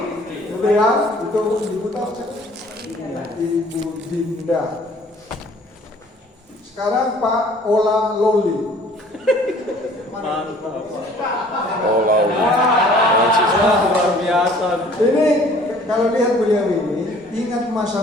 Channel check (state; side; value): normal; both; correlation 0.54